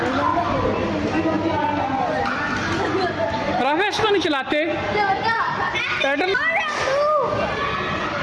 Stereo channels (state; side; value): identical; both; correlation 1.00